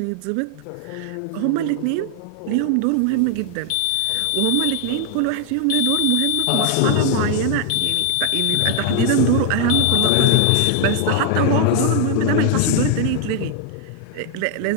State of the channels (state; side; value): different; both; correlation 0.00